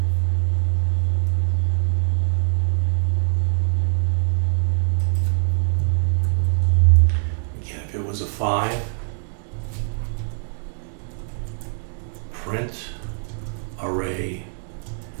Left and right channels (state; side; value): silent; left; 64 dB below the other